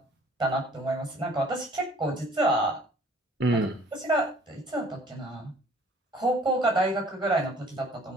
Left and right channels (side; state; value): both; normal; correlation 0.55